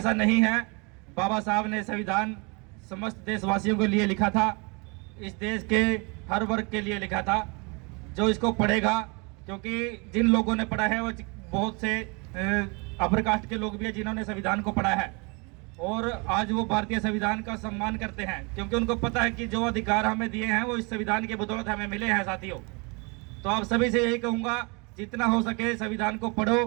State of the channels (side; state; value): left; quieter; 30.6 dB